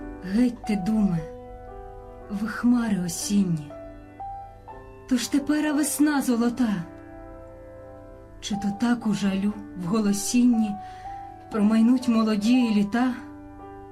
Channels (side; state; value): both; identical; correlation 1.00